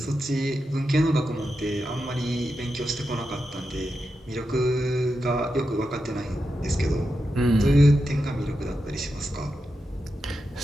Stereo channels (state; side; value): normal; both; correlation 0.88